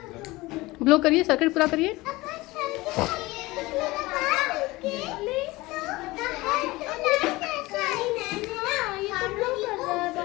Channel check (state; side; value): quieter; right; 20.7 dB